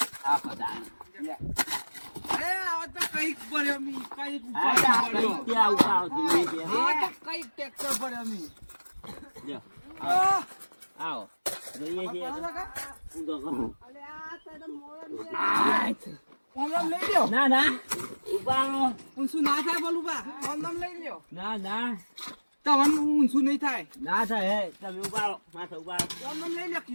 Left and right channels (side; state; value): both; inverted; correlation -1.00